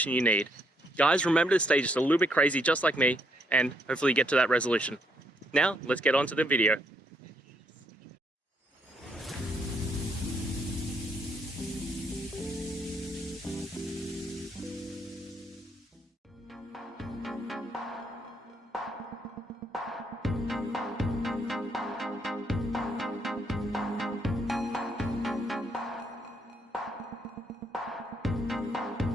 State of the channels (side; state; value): both; normal; correlation 0.72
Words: you need. Guys, remember to stay just a little bit crazy, just like me, and hopefully get to that resolution. Now, let's get on to the video.